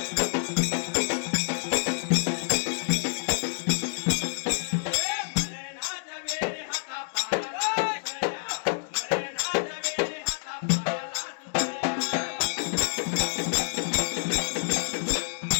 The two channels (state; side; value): silent; right; digital silence